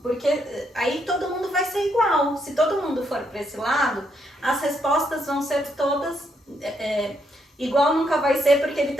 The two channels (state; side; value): normal; both; correlation 0.76